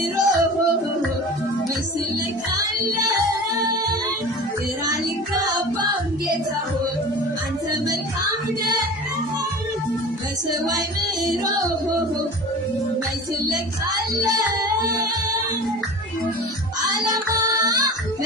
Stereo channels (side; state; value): both; normal; correlation 0.36